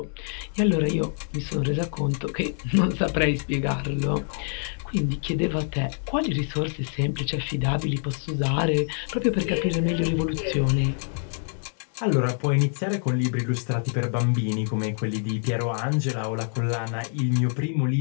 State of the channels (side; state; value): right; silent; 59 dB below the other